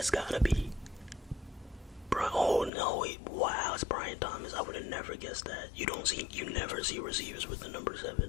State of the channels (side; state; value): right; drops out; at 2.7 s